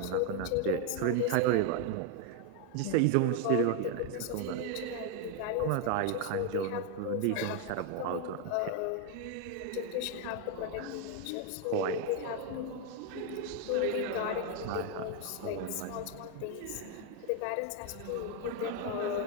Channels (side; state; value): both; different; correlation 0.01